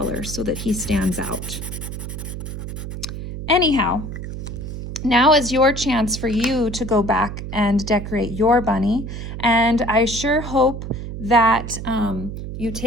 so that he stands out. Anyhow, now is your chance for you to go back and decorate your bunny. And I sure hope that you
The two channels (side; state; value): right; noise; hum, 7 dB below the sound